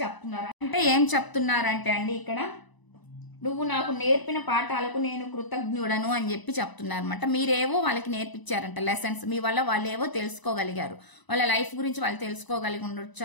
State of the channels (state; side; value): late; right; 1.0 ms